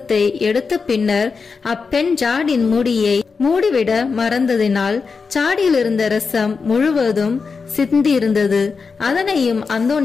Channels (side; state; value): right; quieter; 5.0 dB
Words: எடுத்த பின்னர் அப்பெண் ஜாடின் மூடியை மூடிவிட மறந்ததினால் சாடியில் இருந்த ரசம் முழுவதும் சிந்தியிருந்தது. அதனையும்